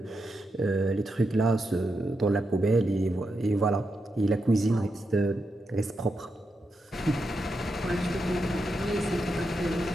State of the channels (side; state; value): both; normal; correlation 0.85